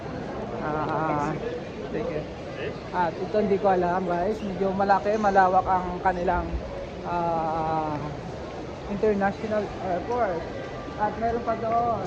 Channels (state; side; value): identical; both; correlation 1.00